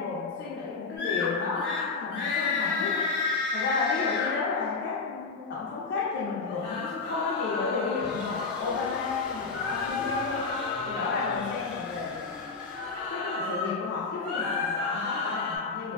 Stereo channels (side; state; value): right; quieter; 4.3 dB